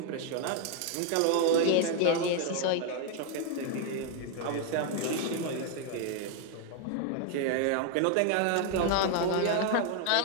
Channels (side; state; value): both; different; correlation 0.01